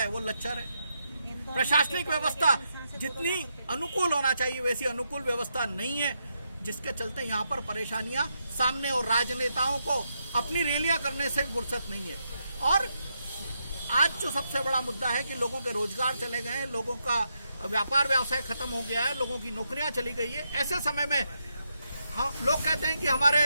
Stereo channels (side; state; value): both; inverted; correlation -0.82